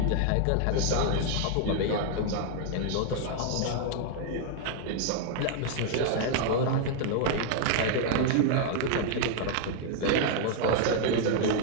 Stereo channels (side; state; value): both; different; correlation 0.00